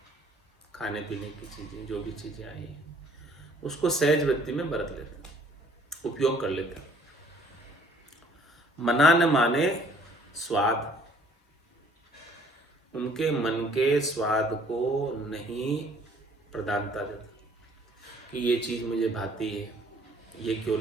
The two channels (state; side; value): normal; both; correlation 0.59